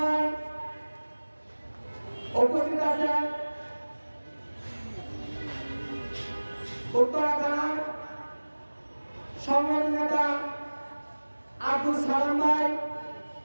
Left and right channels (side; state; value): both; inverted; correlation -1.00